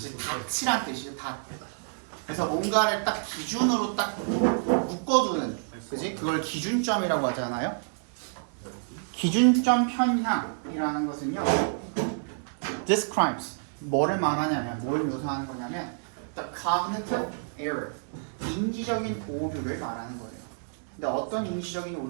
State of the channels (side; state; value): left; silent; digital silence